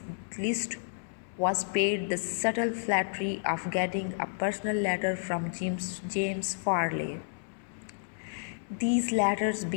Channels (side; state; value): right; silent; 57 dB below the other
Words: list was paid the subtle flattery of getting a personal letter from James Farley. These letters